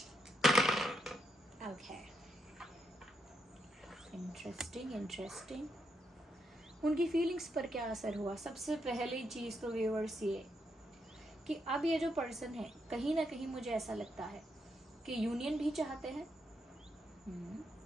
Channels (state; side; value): normal; both; correlation 0.80